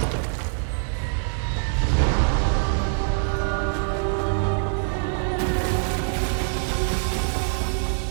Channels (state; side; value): silent; left; 56 dB below the other